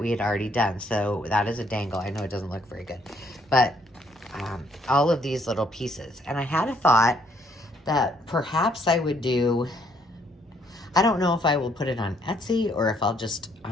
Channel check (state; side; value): normal; both; correlation 0.68